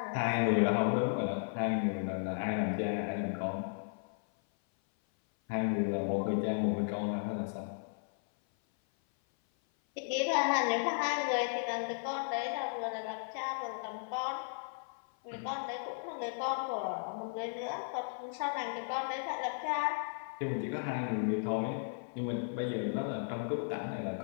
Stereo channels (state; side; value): silent; right; 54 dB below the other